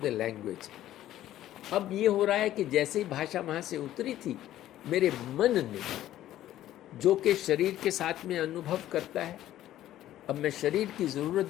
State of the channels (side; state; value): right; quieter; 13.3 dB